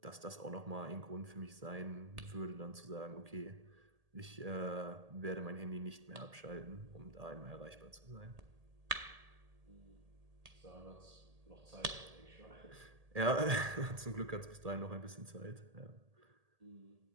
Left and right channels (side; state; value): left; late; 1.8 ms